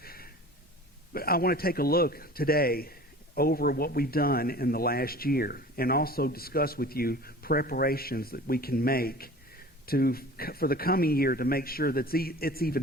But I want to take a look today over what we've done in the last year and also discuss with you preparations that we can make for the coming year to make sure that it's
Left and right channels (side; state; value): both; normal; correlation 0.41